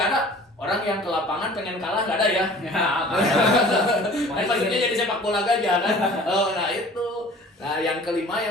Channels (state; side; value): normal; both; correlation 0.46